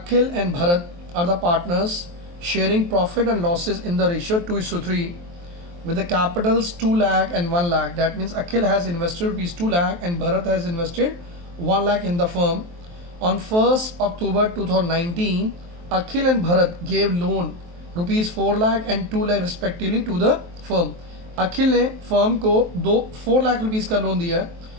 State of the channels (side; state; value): left; late; 23 ms